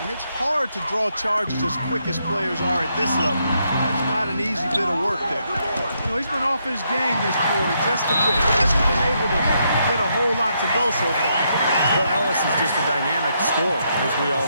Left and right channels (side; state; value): both; inverted; correlation -0.78